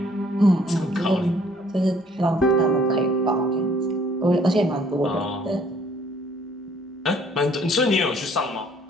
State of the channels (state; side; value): normal; both; correlation 0.61